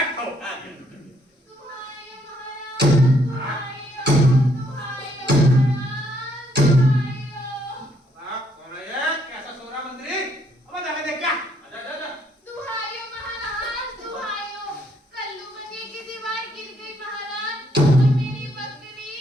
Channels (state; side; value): normal; both; correlation 0.70